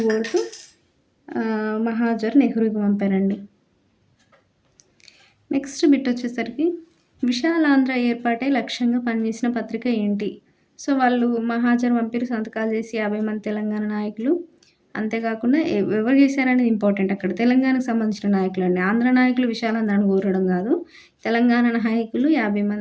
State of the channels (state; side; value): identical; both; correlation 1.00